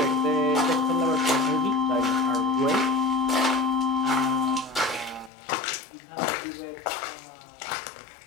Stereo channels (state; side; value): drops out; right; at 5.3 s